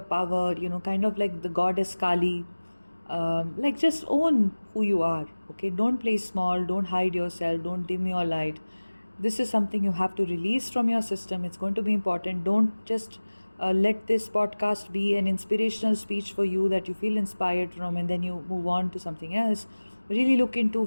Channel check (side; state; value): both; inverted; correlation -1.00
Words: power, kind of like the goddess Kali. Like, just own who you are. Okay, don't play small, don't hide yourself, don't dim your light. This is something you have to release from your system. It's going to be important. Don't just let this podcast be an inspirational speech for you that you feel inspired from and then you move on to something else. Really look into,